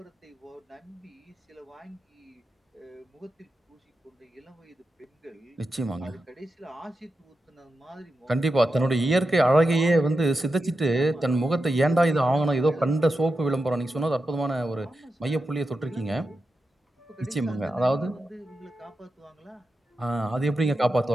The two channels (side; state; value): both; normal; correlation 0.89